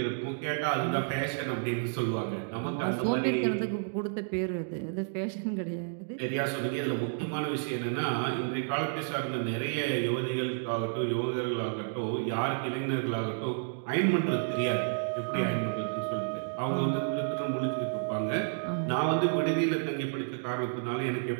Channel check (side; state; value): left; silent; digital silence